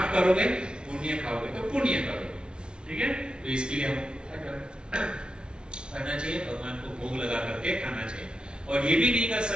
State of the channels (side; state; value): left; late; 0.055 ms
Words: करोगे, पुण्य खाओगे तो पुण्य करोगे। ठीक है, तो इसके लिए हम करना चाहिए, भगवान को भोग लगा करके खाना चाहिए। और ये भी नहीं कर